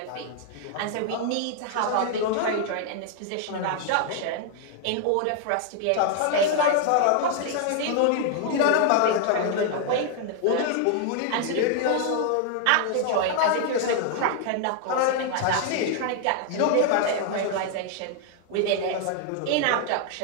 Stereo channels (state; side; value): different; both; correlation 0.00